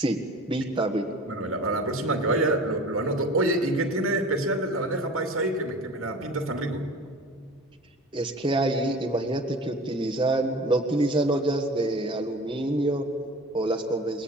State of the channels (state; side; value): normal; both; correlation 0.40